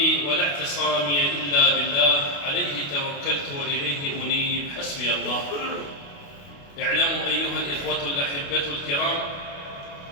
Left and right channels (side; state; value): right; late; 28 ms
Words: ولا اعتصامي إلا بالله، عليه توكلت وإليه أنيب، حسبي الله. اعلموا أيها الإخوة الأحبة الكرام